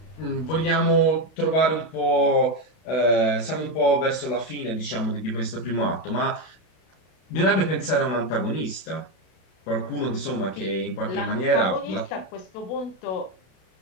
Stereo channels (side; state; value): right; late; 32 ms